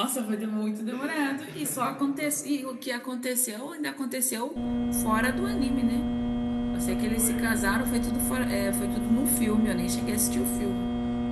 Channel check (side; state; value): both; identical; correlation 1.00